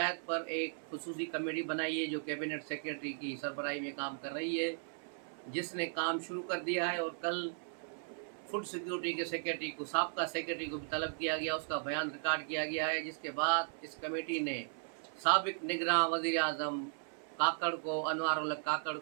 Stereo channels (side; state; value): left; silent; 53 dB below the other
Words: पर एक खुसूसी कमेटी बनाई है जो कैबिनेट सेक्रेटरी की सरबराही में काम कर रही है, जिसने काम शुरू कर दिया है। और कल फूड सिक्योरिटी के सेक्रेटरी को साबका सेक्रेटरी को भी तलब किया गया, उसका बयान रिकॉर्ड किया गया है, जिसके बाद इस कमेटी ने साबिक निगरान वज़ीर आज़म काकड़ को, अनवार उल हक काकड़